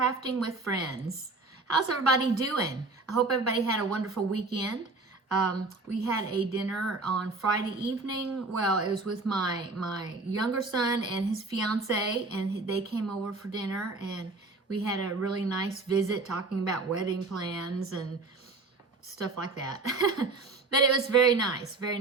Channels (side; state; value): left; quieter; 3.5 dB